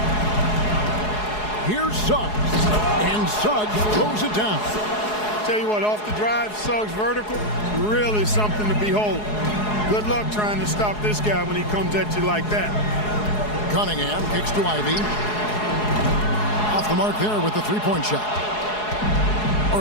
Here's Suggs. And Suggs throws it down. Tell you what, off the drive, Suggs vertical, really something to behold. Good luck trying to stop this guy when he comes at you like that. Cunningham kicks to Ivy. Off the mark there with the three-point shot.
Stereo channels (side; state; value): right; late; 4.7 ms